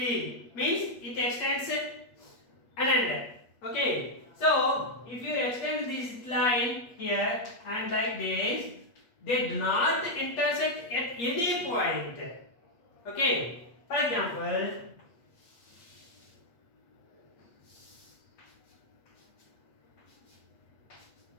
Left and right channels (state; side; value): late; right; 8.4 ms